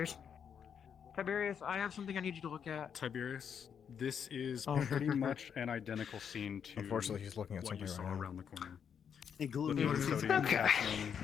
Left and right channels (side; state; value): right; quieter; 7.6 dB